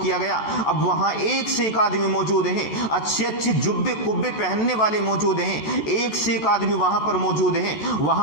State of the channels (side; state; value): right; late; 14 ms